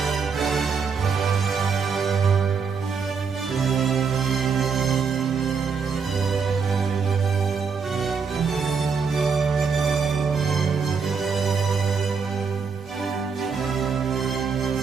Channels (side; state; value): left; quieter; 5.6 dB